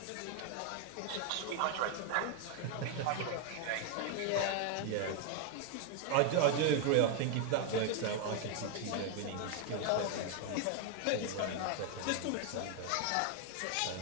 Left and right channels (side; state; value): both; different; correlation 0.01